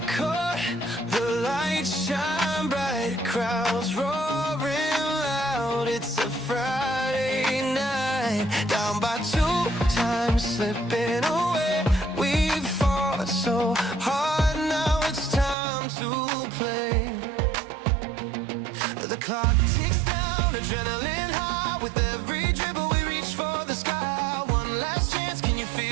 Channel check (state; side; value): drops out; left; at 15.6 s